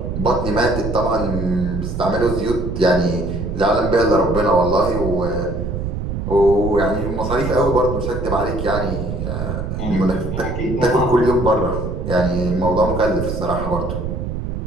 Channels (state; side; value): noise; right; rumble, 4 dB below the sound